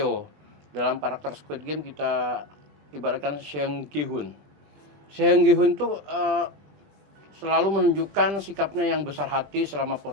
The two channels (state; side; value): late; left; 20 ms